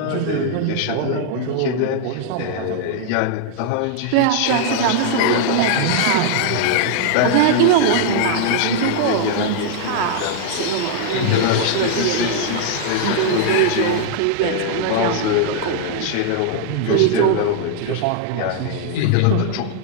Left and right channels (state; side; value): different; both; correlation -0.01